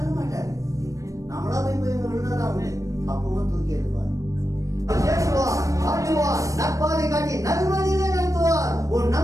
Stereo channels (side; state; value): left; late; 0.16 ms